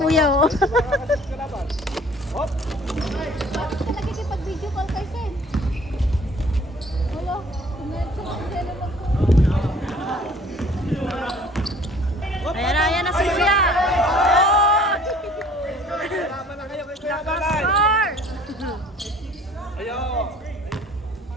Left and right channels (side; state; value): both; normal; correlation 0.53